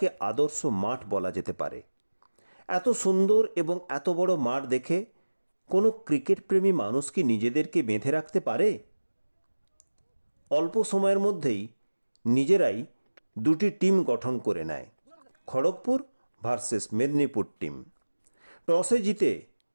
আদর্শ মাঠ বলা যেতে পারে। এত সুন্দর এবং এত বড় মাঠ দেখে কোনো ক্রিকেট প্রেমী মানুষ কি নিজেদেরকে বেঁধে রাখতে পারে? অল্প সময়ের মধ্যেই নিজেরাই দুটি টিম গঠন করে নেয়, খড়গপুর ভার্সেস মেদিনীপুর টিম। টসে জিতে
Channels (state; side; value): inverted; both; correlation -1.00